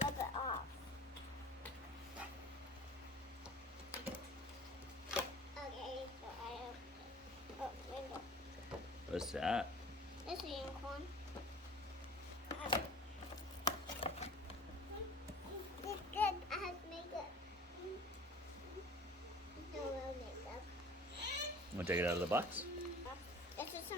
rub it off. Okay, so I open it. Oh, window. What's that? It's a unicorn. It's good. I have makeup. No real makeup. Want to take it out of the box? This is a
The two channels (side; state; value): both; normal; correlation 0.44